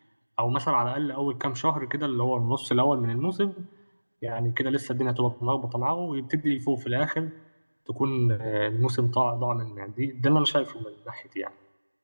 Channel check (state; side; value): inverted; both; correlation -1.00